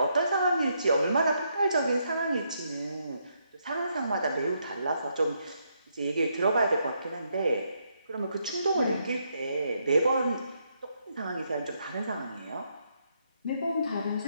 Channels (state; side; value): inverted; both; correlation -0.77